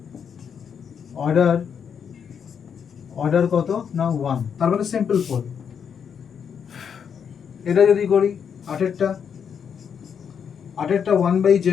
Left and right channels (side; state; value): right; quieter; 7.3 dB